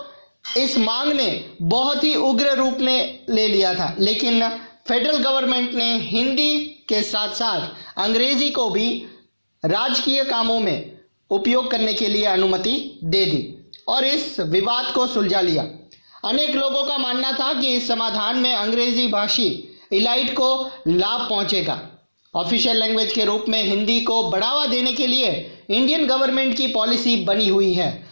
इस मांग ने बहुत ही उग्र रूप में ले लिया था, लेकिन फेडरल गवर्नमेंट ने हिंदी के साथ साथ अंग्रेजी को भी राजकीय कामों में उपयोग करने के लिए अनुमति दे दी और इस विवाद को सुलझा लिया। अनेक लोगों का मानना था कि इस समाधान में अंग्रेजी भाषी इलाइट को लाभ पहुंचेगा। ऑफिशियल लैंग्वेज के रूप में हिंदी को बढ़ावा देने के लिए इंडियन गवर्नमेंट की पॉलिसी बनी हुई है,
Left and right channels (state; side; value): inverted; both; correlation -1.00